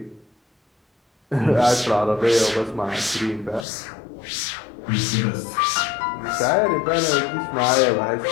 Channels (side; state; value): right; drops out; at 3.7 s